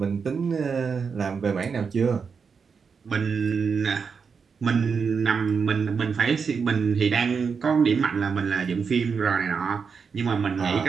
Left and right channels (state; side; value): quieter; left; 5.8 dB